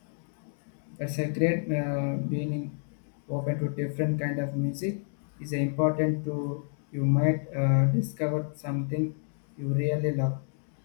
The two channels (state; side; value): silent; right; digital silence